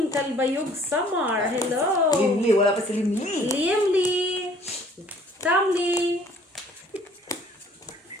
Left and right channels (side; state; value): both; normal; correlation 0.56